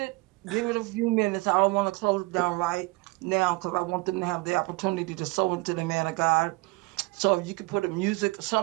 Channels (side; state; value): left; quieter; 24.3 dB